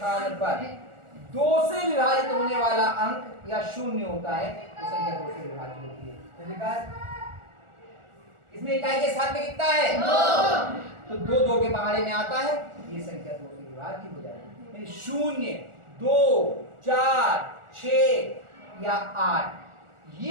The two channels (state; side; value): late; left; 1.4 ms